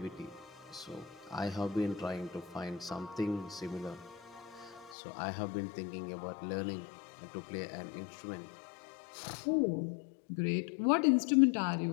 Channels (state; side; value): drops out; right; at 5.0 s